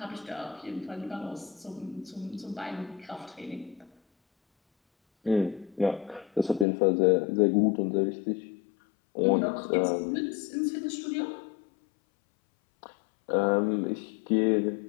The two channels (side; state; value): right; drops out; at 6.7 s